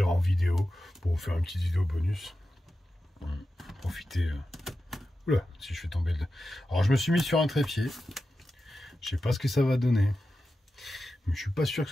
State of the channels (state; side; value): normal; both; correlation 0.92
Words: en vidéo pour vous faire une petite vidéo bonus. Profitez. Oula, si je fais tomber le... Alors, je me suis mis sur un trépied. Je sais pas ce que ça va donner. Mais je suis pas sûr que